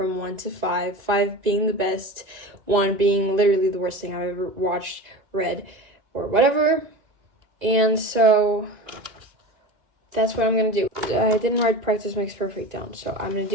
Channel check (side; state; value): left; late; 2.6 ms